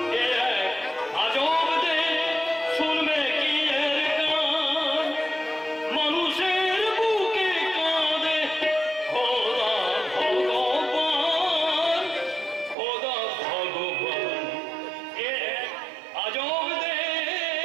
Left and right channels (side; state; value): left; drops out; at 12.8 s